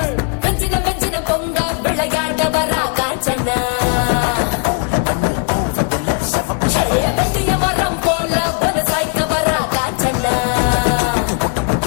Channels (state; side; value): quieter; right; 32.7 dB